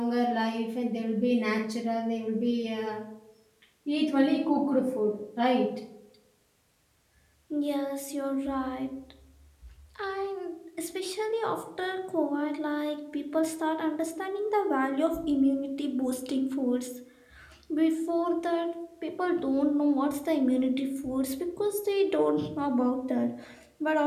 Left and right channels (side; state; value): both; identical; correlation 1.00